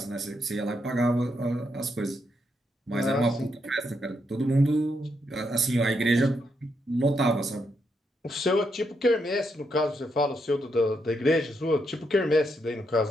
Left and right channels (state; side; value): normal; both; correlation 0.80